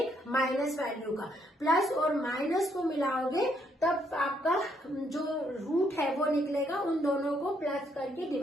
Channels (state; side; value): normal; both; correlation 0.72